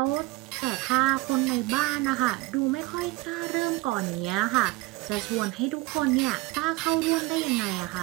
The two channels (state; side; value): quieter; left; 22.0 dB